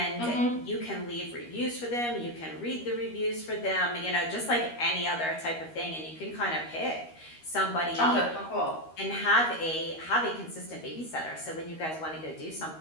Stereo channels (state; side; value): late; right; 13 ms